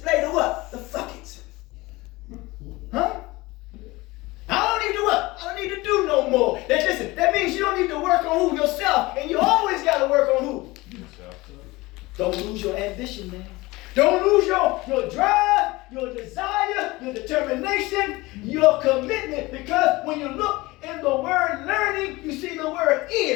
the what? The fuck it. Huh? I don't need to what? I don't need to do no more. That means you don't need to work on who? Yourself. And you always got to work on who? Yourself. Don't lose your ambition, man. Don't lose your drive, your desire, your determination, your commitment. Because when you look in the word learning, you see the word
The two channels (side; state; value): right; quieter; 21.2 dB